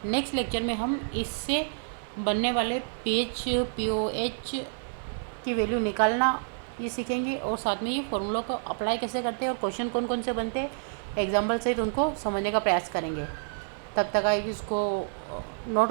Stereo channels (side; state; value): left; silent; 59 dB below the other